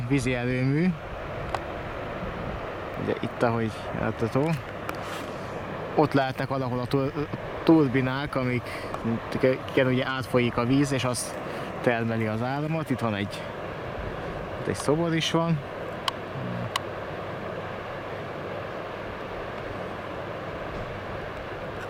vízi erőmű. Ugye itt, ahogy látható, ott lehetnek valahol a turbinák, amiken ugye átfolyik a víz, és az termeli az áramot. Itt van egy szobor is van.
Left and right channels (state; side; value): identical; both; correlation 1.00